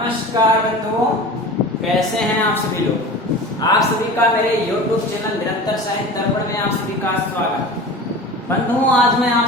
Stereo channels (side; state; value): both; normal; correlation 0.35